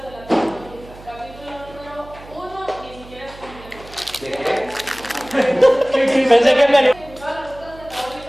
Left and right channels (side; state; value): right; noise; hum, 19 dB below the sound